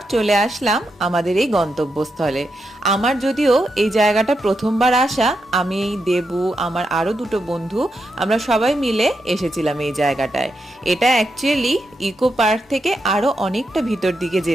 চলে আসলাম আমাদের এই গন্তব্যস্থলে। আমার যদিও এই জায়গাটা প্রথমবার আসা, আমি দেবু আমার আরো দুটো বন্ধু আমরা সবাই মিলে এসেছিলাম এই জায়গাটায়। এটা অ্যাকচুয়ালি ইকো পার্ক থেকে আরো অনেকটা ভিতর দিকে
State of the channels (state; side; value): normal; both; correlation 0.84